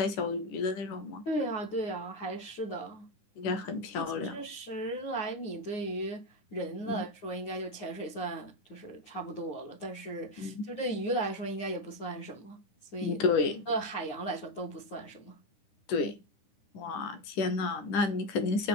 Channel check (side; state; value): right; late; 9.8 ms